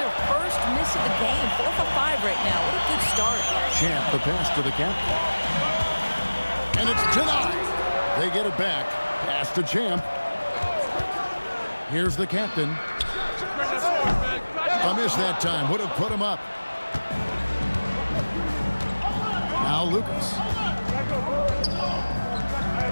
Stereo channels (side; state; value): both; inverted; correlation -1.00